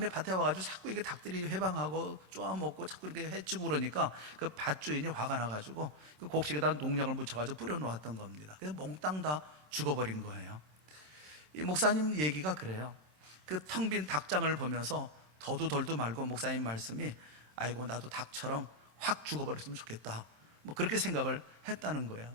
밭에 와가지고 자꾸 이게 닭들이 회방하고 쪼아먹고 자꾸 이렇게 해치고 그러니까 그 밭주인이 화가 나가지고 그 곡식에다 농약을 묻혀가지고 뿌려놓았던 겁니다. 그래서 몽땅 다 죽어버린 거예요. 이 목사님 얘기가 그래요. 그 텅 빈 닭장을 보면서 더도 덜도 말고 목사님 말씀이 아이고 나도 닭처럼 확 죽어버렸으면 좋겠다. 그렇게 생각을 했다는 거예요.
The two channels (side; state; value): left; late; 27 ms